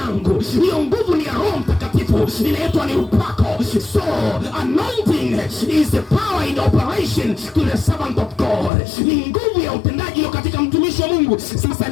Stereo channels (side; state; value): right; drops out; at 8.7 s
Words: Hiyo nguvu ni ya Roho Mtakatifu, inaitwa ni upako. So anointing is the power in operation to the servant of God. Ni nguvu ya utendaji katika mtumishi wa Mungu. Sasa